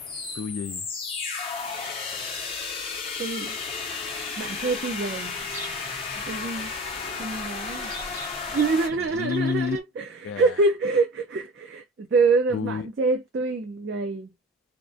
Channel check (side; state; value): both; normal; correlation 0.37